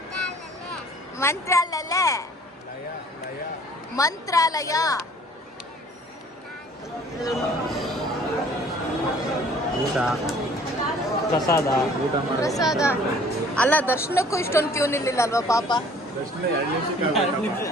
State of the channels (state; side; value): normal; both; correlation 0.53